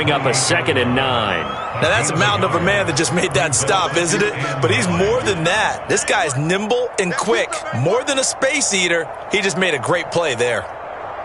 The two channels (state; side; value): identical; both; correlation 1.00